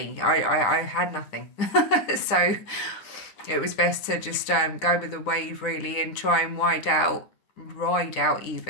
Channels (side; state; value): right; late; 9.8 ms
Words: I had nothing. So it was best to just go with the wave really and try and ride out